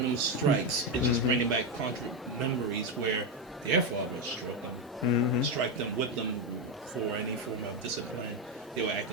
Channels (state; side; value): normal; both; correlation 0.08